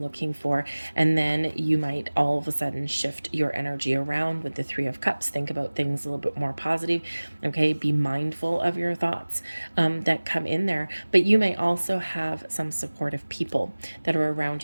looking for. And then you might all of a sudden shift your energy around with the Three of Cups. Think about things a little bit more positive, okay? Be mindful of your thoughts that come in there. But you may also have some supportive people that are around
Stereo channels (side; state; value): both; inverted; correlation -1.00